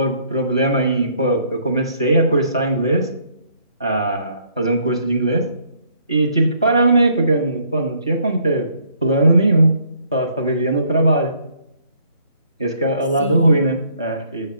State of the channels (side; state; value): both; inverted; correlation -0.65